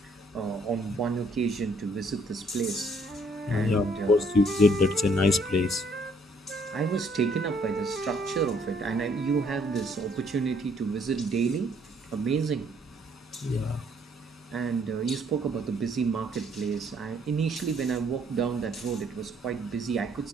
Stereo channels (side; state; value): both; normal; correlation 0.65